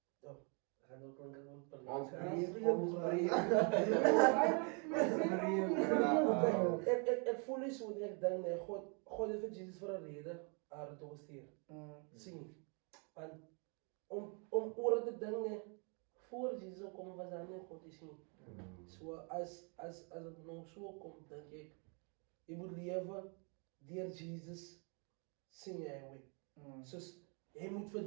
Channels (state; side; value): quieter; left; 36.7 dB